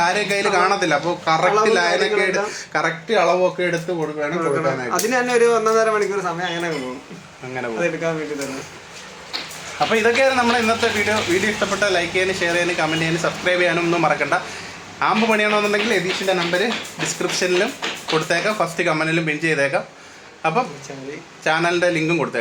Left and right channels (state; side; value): identical; both; correlation 1.00